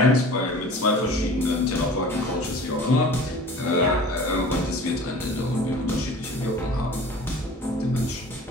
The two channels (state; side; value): normal; both; correlation 0.43